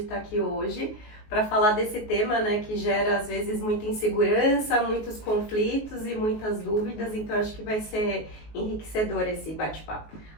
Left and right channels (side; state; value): right; late; 19 ms